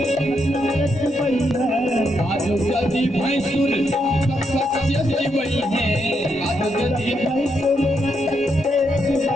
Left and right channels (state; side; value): normal; both; correlation 0.80